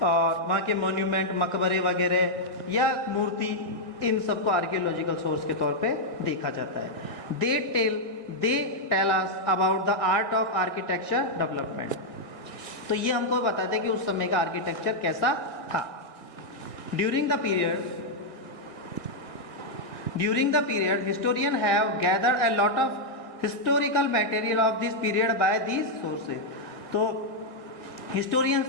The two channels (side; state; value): right; late; 1.8 ms